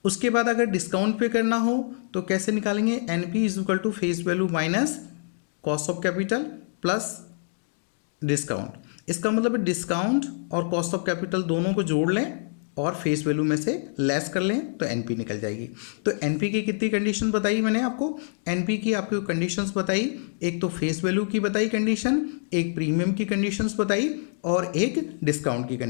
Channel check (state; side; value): silent; right; digital silence